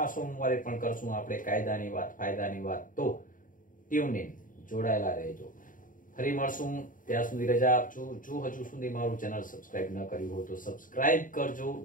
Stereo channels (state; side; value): late; right; 0.39 ms